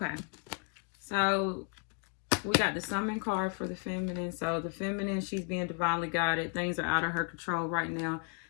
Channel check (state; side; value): quieter; right; 38.1 dB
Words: so we got the Summon card for the Feminine. So the Feminine, she's being divinely guided. Things are out of her control right now.